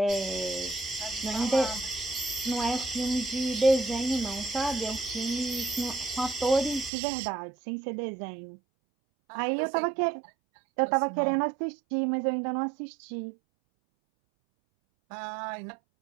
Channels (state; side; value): drops out; left; at 6.9 s